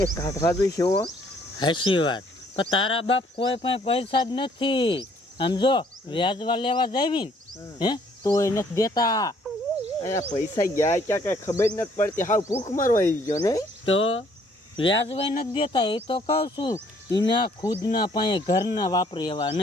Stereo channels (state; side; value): normal; both; correlation 0.63